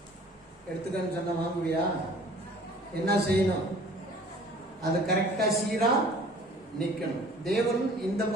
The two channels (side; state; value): both; normal; correlation 0.50